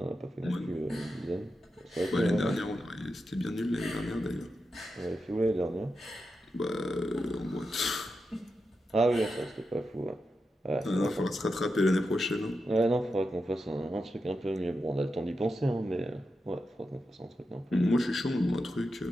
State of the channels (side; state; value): both; normal; correlation 0.88